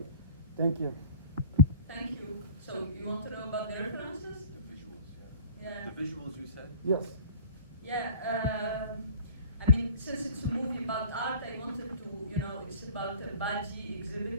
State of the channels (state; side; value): inverted; both; correlation -0.43